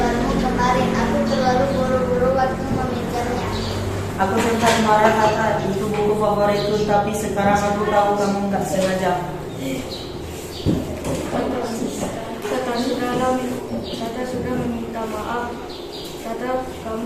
kemarin. Aku terlalu buru-buru waktu memikirnya. Aku sempat marah kata itu buku favoritku, tapi sekarang aku tahu kamu nggak sengaja. Tata sudah meminta maaf. Tata,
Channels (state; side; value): identical; both; correlation 1.00